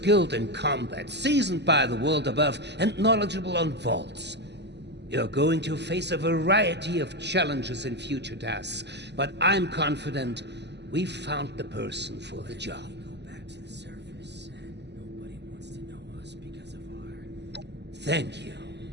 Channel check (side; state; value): left; late; 0.50 ms